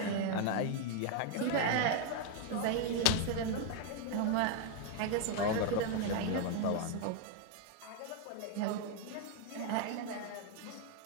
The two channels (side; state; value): both; different; correlation 0.01